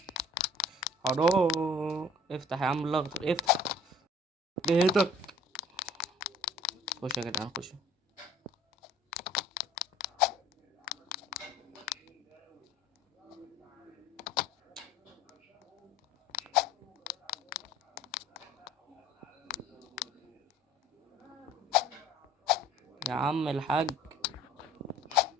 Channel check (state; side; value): normal; both; correlation 0.51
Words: حرام. افتح يا عم الاخضر افتح. بيتك. خش يا جدعان خش. يا عم الحاج.